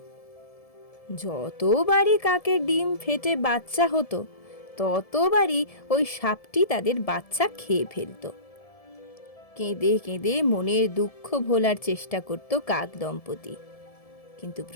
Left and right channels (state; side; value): late; right; 1.7 ms